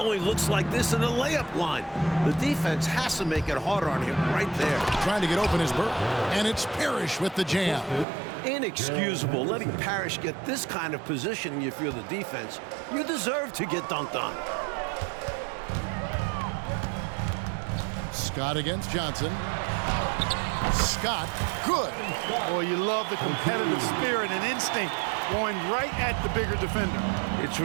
looks like this in the layup line. The defense has to make it harder on him right there. Trying to get open is Bird. And it's Parrish with the jam. Inexcusable letting Parrish get this kind of positioning if you're the defense. You deserve to get dunked on. Scott against Johnson. Scott, good. Boy, you love the competitive spirit and instinct going right at the bigger defender. It's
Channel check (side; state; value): left; drops out; at 8.1 s